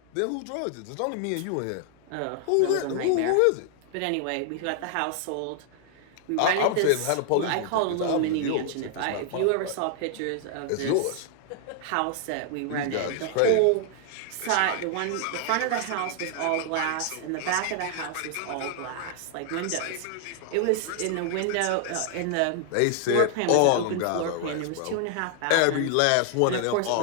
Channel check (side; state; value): both; different; correlation 0.00